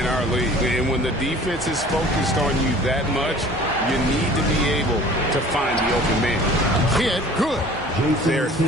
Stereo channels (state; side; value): normal; both; correlation 0.47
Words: our league. And when the defense is focused on you that much, you need to be able to find the open man. Kidd, good. Their